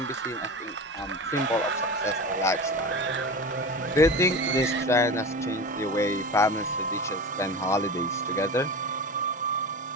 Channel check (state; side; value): normal; both; correlation 0.29